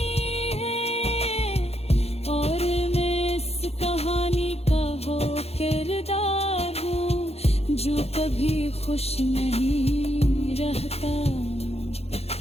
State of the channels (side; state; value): right; late; 0.30 ms